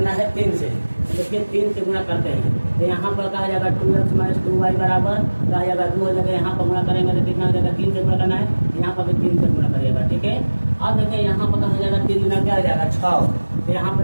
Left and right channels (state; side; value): inverted; both; correlation -1.00